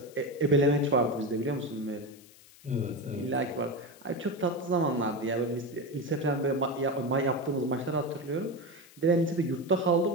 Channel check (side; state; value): left; noise; hiss, 24 dB below the sound